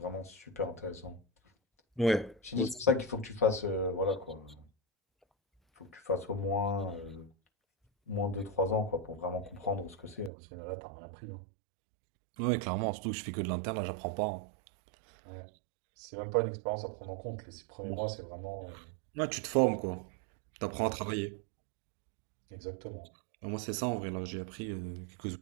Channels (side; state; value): left; drops out; at 10.3 s